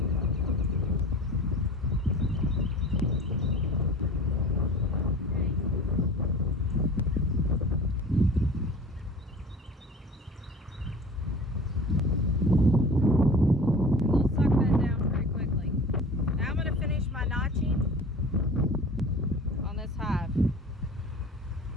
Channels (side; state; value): both; normal; correlation 0.40